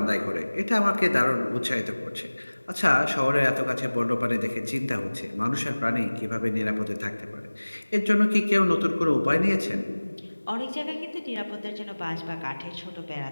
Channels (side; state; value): both; inverted; correlation -1.00